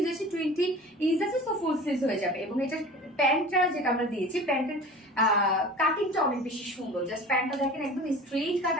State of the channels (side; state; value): both; normal; correlation 0.39